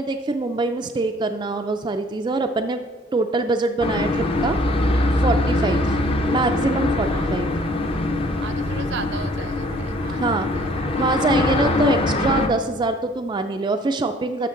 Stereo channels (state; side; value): normal; both; correlation 0.57